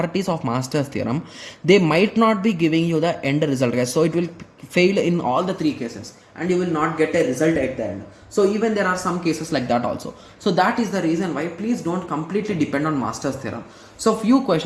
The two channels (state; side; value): identical; both; correlation 1.00